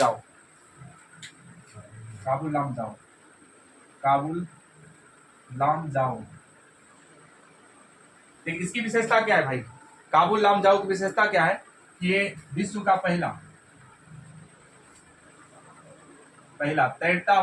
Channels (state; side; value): identical; both; correlation 1.00